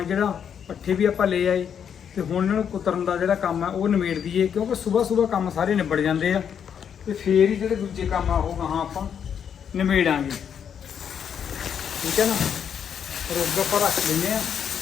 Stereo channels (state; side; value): quieter; right; 8.0 dB